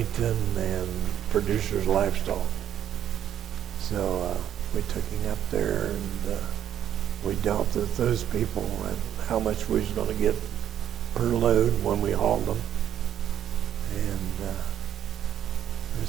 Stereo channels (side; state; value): left; quieter; 10.3 dB